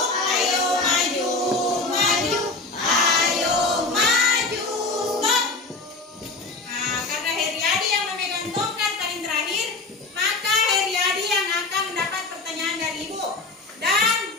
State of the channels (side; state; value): right; quieter; 3.4 dB